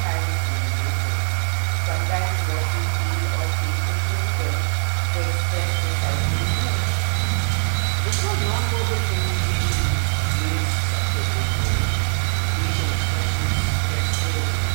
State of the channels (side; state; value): left; silent; digital silence